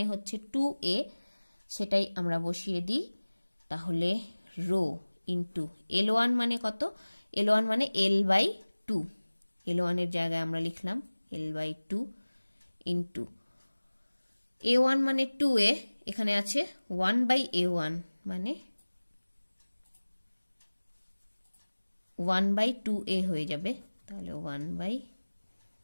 হচ্ছে 2A, সেটাই আমরা বসিয়ে দিই। তাহলে রো ইন্টু L1 মানে কত, L1 মানে L বাই 2, L1 এর জায়গায় আমরা লিখলাম L বাই 2 ইন্টু A1 মানে 2A, এখানে আছে 1 বাই A1 মানে 1 বাই 2A হয়ে যাবে, তাহলে 1 বাই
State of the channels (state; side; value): inverted; both; correlation -1.00